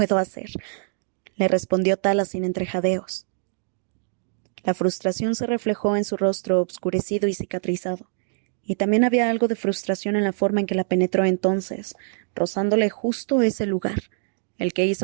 hacer, le respondió Tala sin entrejadeos. La frustración se reflejó en su rostro obscurecido y cicatrizado, y también había algo de frustración en la forma en que la penetró entonces, rozándole justo ese lugar, el que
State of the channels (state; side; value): silent; left; digital silence